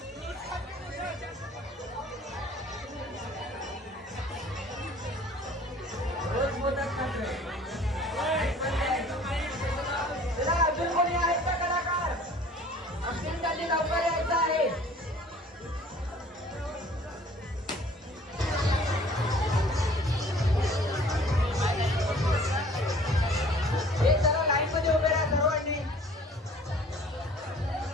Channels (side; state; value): both; normal; correlation 0.51